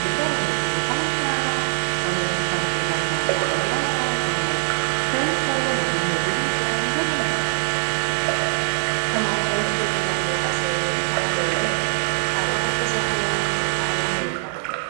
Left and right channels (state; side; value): silent; left; 58 dB below the other